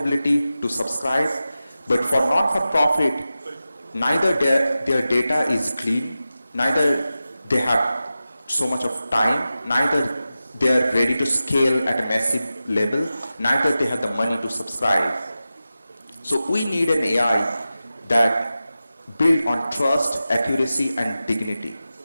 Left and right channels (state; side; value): inverted; both; correlation -0.94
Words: to subscribe. But for non-for-profit, neither their data is clean, neither they have so much of time, neither they are ready to scale at a massive level, neither they have the money to subscribe. So we need an AI that built on trust, accuracy, and dignity.